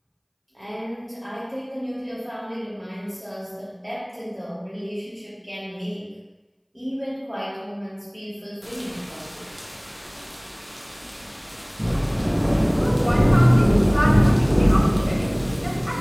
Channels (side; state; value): both; identical; correlation 1.00